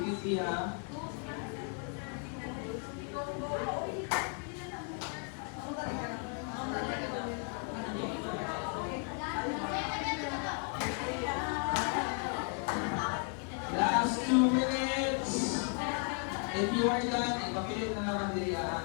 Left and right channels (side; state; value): right; quieter; 39.1 dB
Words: ha. Last 2 minutes. If you are done, ipapilit na naman din